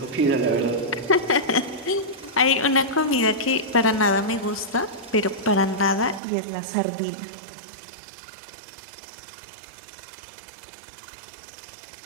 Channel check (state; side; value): drops out; left; at 6.2 s